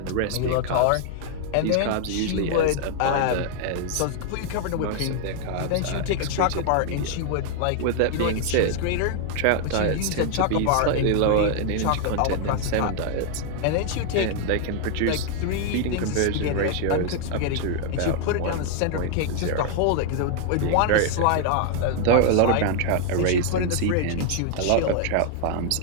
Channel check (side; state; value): both; different; correlation 0.00